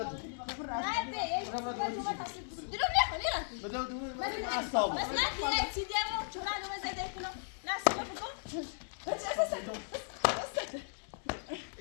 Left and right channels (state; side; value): silent; right; digital silence